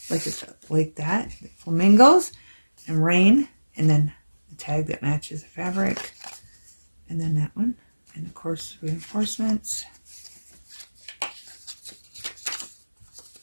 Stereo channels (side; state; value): both; inverted; correlation -1.00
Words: like that. Flamingos and rain. And then the tag that matches the fabric. And then that one. And of course, reinforcements.